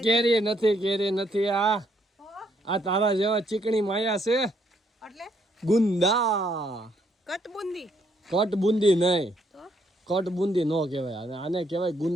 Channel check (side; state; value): both; normal; correlation 0.71